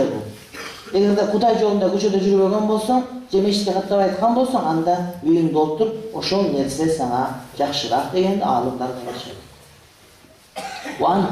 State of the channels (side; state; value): both; identical; correlation 1.00